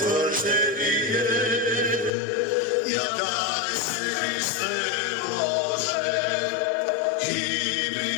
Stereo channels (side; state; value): right; drops out; at 2.1 s